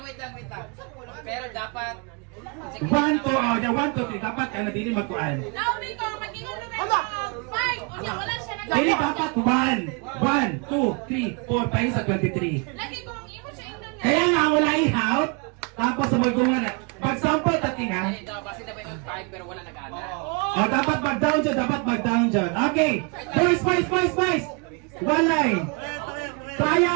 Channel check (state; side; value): quieter; left; 32.1 dB